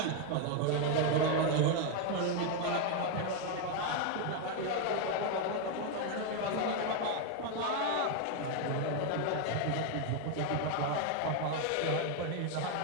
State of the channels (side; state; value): both; different; correlation 0.01